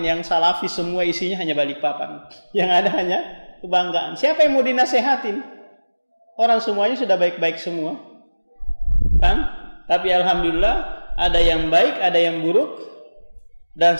yang salafi, semua isinya hanya Balikpapan. Yang ada hanya kebanggaan. Siapa yang mau dinasehatin? Orang semuanya sudah baik-baik semua. Kan? Tapi alhamdulillah ada yang baik, ada yang buruk, dan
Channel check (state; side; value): inverted; both; correlation -1.00